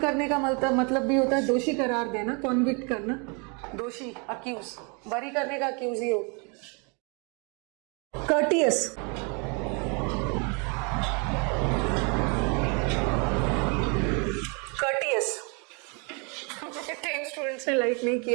का मतलब भी होता है दोषी करार देना, कॉन्विक्ट करना, दोषी, अक्यूज। बरी करने का अक्यूज ही हो। कर्टियस, कर्टियस 10 स्टूडेंट्स ने लाइक नहीं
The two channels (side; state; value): left; quieter; 33.5 dB